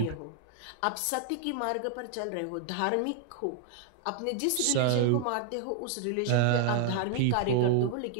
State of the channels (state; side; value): different; both; correlation 0.00